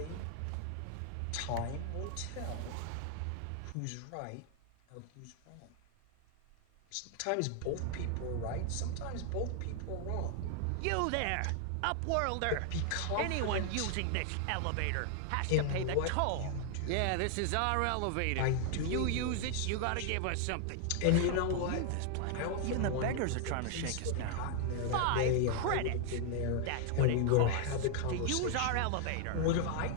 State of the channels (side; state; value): both; different; correlation 0.00